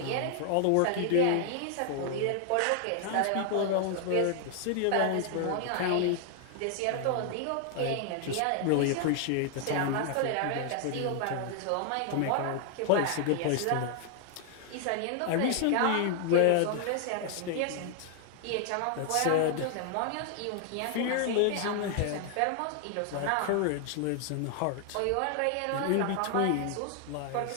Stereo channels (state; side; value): different; both; correlation 0.00